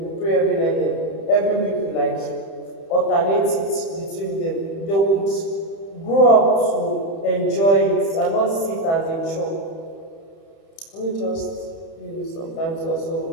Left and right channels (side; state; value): right; late; 30 ms